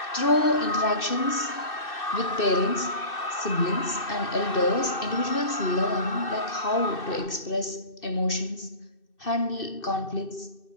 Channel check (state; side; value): late; right; 2.6 ms